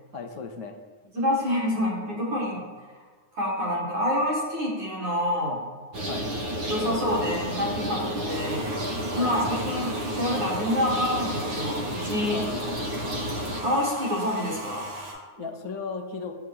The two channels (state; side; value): late; left; 9.6 ms